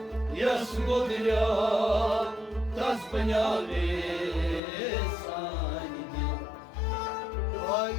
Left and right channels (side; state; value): right; drops out; at 4.6 s